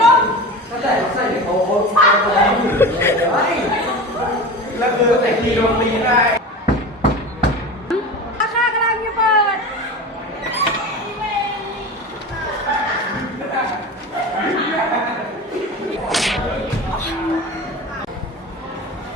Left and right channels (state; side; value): normal; both; correlation 0.31